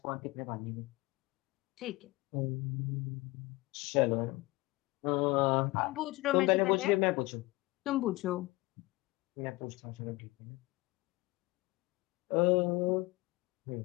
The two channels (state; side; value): quieter; right; 21.7 dB